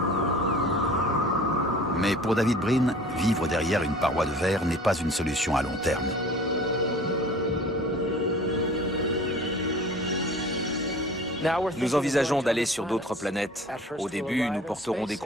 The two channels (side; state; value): both; normal; correlation 0.45